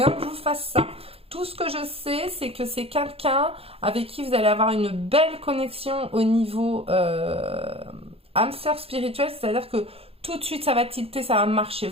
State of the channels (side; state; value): left; late; 0.28 ms